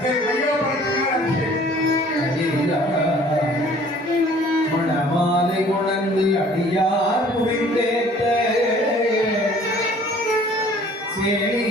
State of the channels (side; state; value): both; normal; correlation 0.53